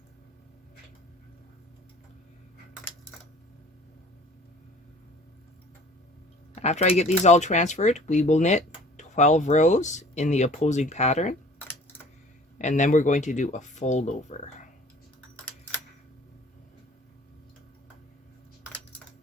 After I get these all transferred, we will knit 12 rows in the opposing pattern, and then we're going to do a fold over.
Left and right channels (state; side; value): normal; both; correlation 0.49